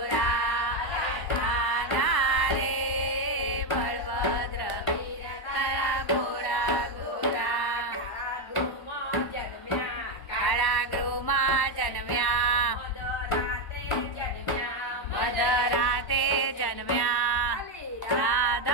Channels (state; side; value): late; right; 1.1 ms